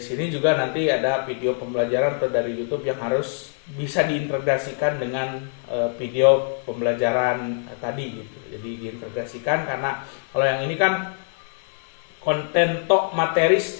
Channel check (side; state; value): right; silent; 63 dB below the other